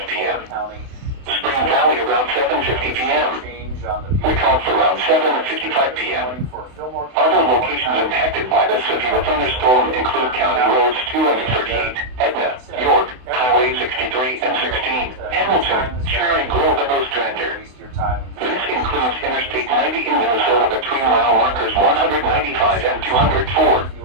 p.m. Spring Valley around 7:50 p.m. Wyckoff around 7:55 p.m. Other locations impacted by the severe thunderstorm include County Roads 2 and 38, Etna, York, Highway 63 and 16, Hamilton, Cherry Grove, and Ostrander. This includes Interstate 90 in Minnesota between mile markers 195 and 204.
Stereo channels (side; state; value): left; late; 32 ms